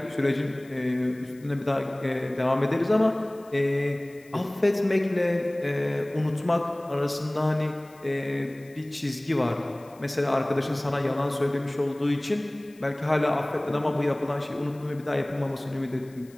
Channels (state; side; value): noise; left; hiss, 27 dB below the sound